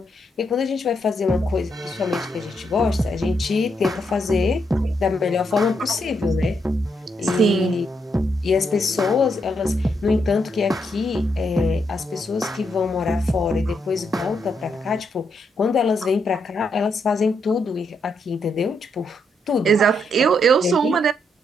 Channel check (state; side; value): normal; both; correlation 0.78